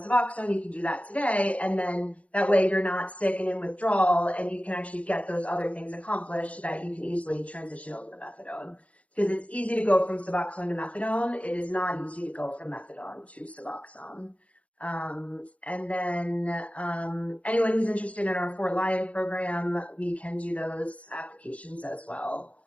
Suboxone, you can do that today. And then that way you're not sick and in withdrawal, and you can actually get those other things accomplished so that you can easily transition over to methadone. Because it's easy to go from Suboxone to methadone. It is not easy to go from methadone to Suboxone. And then, anyone who's interested in our Fort Lyon program, we can do those applications as well.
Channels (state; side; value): late; right; 0.065 ms